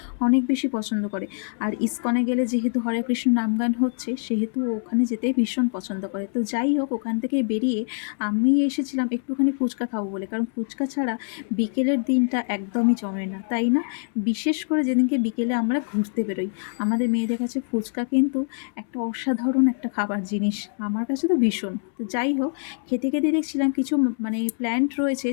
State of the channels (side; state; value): right; silent; 62 dB below the other